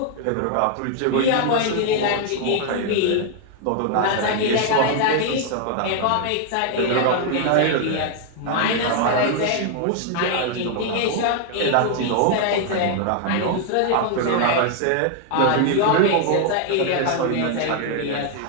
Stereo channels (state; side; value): different; both; correlation 0.00